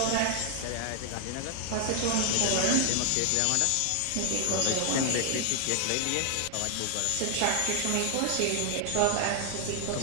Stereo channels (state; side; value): different; both; correlation 0.00